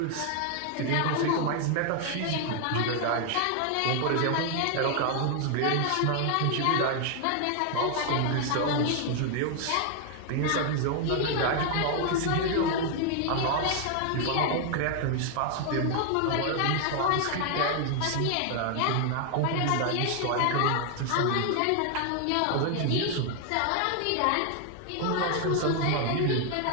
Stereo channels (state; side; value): different; both; correlation 0.00